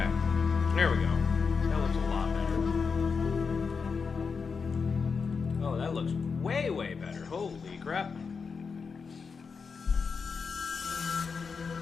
there we go. That looks a lot better. Oh, that looks way, way better. Holy crap.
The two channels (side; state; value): right; quieter; 5.3 dB